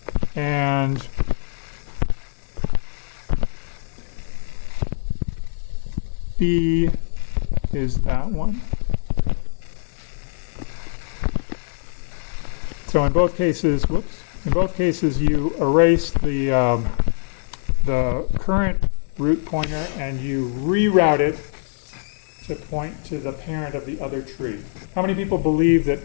and B is that one. So in both cases, you erase the current root pointer and you reroute it to point to the parent of the other tree. How many people believe that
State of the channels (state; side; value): silent; right; 64 dB below the other